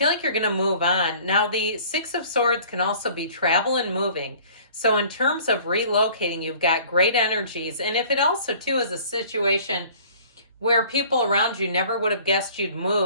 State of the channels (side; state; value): both; inverted; correlation -0.50